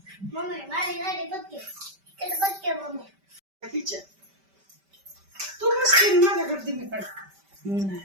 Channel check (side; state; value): left; late; 5.1 ms